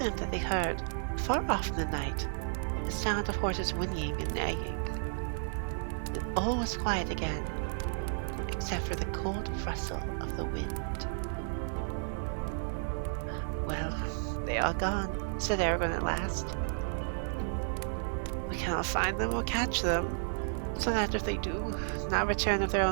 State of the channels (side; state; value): left; silent; digital silence